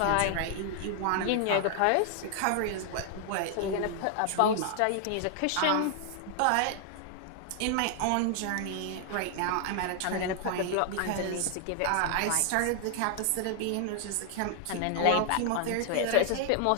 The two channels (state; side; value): different; both; correlation 0.00